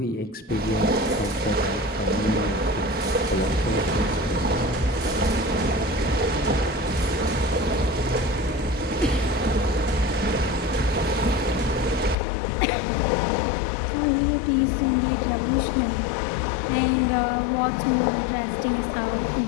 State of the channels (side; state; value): right; drops out; at 12.2 s